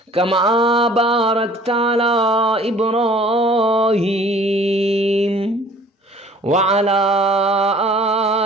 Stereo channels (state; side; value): normal; both; correlation 0.51